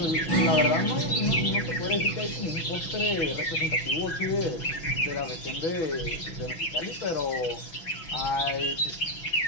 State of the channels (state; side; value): late; right; 6.1 ms